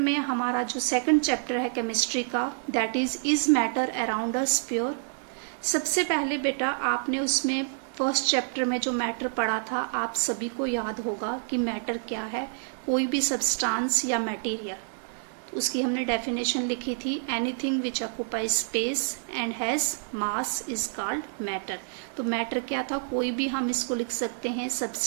हमारा जो सेकंड चैप्टर है केमिस्ट्री का that is matter around us pure. सबसे पहले बेटा आपने उसमें फर्स्ट चैप्टर में जो मैटर पढ़ा था आप सभी को याद होगा कि मैटर क्या है, कोई भी सब्सटेंस या मटेरियल। तो उसकी हमने डेफिनेशन लिखी थी, anything which occupies space and has mass is called matter. तो मैटर क्या था, कोई भी हम इसको लिख सकते हैं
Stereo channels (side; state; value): left; silent; digital silence